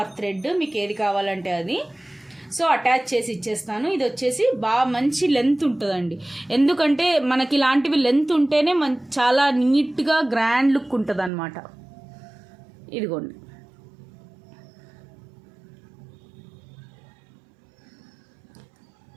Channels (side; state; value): left; drops out; at 11.3 s